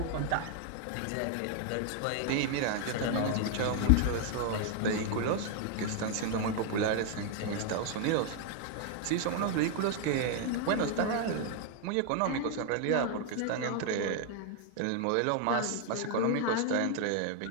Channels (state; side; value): different; both; correlation 0.00